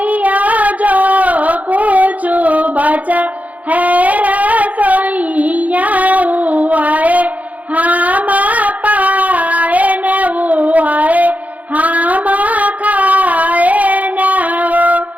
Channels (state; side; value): late; left; 0.074 ms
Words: जो कुछ बचा है रसोइया